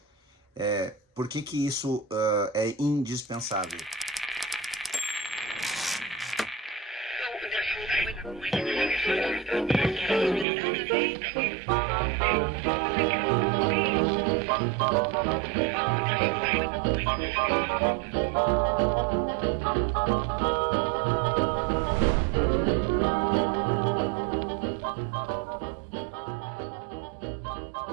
por que isso é indispensável?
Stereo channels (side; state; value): left; drops out; at 10.5 s